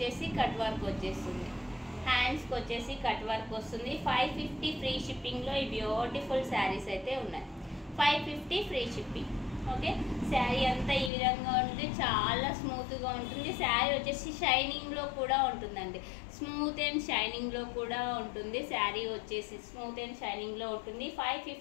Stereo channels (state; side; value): drops out; right; at 11.1 s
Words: కట్ వర్క్ వచ్చేస్తుంది. హ్యాండ్స్కి వచ్చేసి కట్ వర్క్ వస్తుంది. 550 ఫ్రీ షిప్పింగ్లో ఈ బ్యూటిఫుల్ శారీస్ అయితే ఉన్నాయి. 550 ఫ్రీ షిప్పింగ్. ఓకే, శారీ అంతా ఈ విధంగా ఉంటుంది. చాలా స్మూత్గా ఉంటుంది. శారీ వచ్చేసి షైనింగ్లో కూడా ఉంటుందండి. స్మూత్ అండ్ షైనింగ్లో కూడా ఉంటుంది. శారీ వచ్చేసి స్మూత్ అండ్ షైనింగ్లో ఉంటుంది.